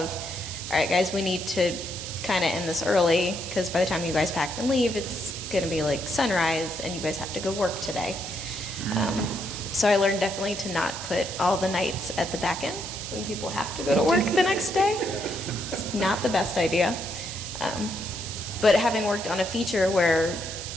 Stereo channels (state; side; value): noise; right; hiss, 8 dB below the sound